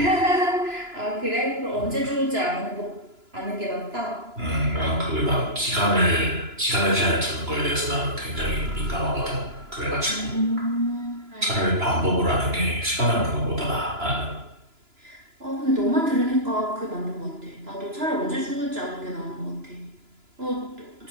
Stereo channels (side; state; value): left; late; 2.9 ms